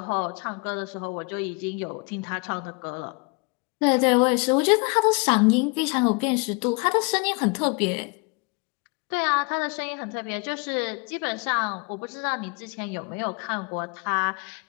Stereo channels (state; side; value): quieter; right; 31.3 dB